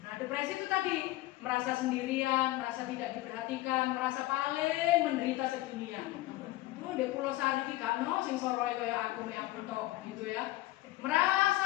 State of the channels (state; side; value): quieter; right; 17.7 dB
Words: Nah, depresi itu tadi merasa sendirian, merasa tidak diperhatikan, merasa paling menderita sedunia. Di Pulau Sari ki gak ono sing soroe kaya aku tok gitu ya. Merasa